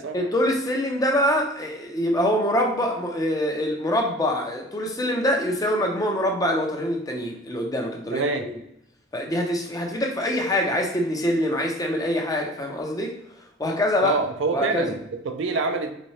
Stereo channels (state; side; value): normal; both; correlation 0.43